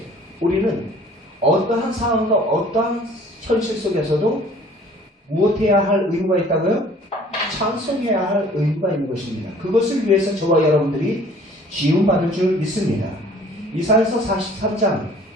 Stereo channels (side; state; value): both; normal; correlation 0.52